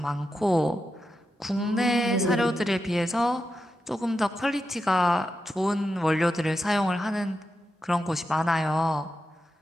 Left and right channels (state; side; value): normal; both; correlation 0.88